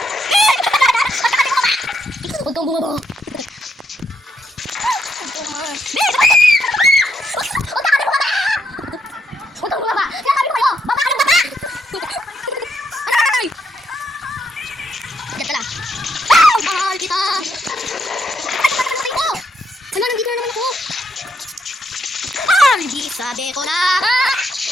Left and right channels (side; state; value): both; normal; correlation 0.77